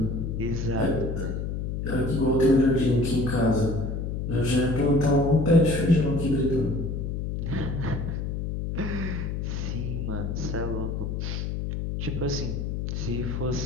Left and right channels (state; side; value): noise; left; hum, 3 dB below the sound